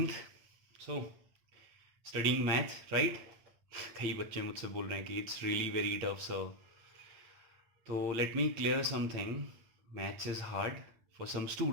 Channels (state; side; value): late; left; 9.0 ms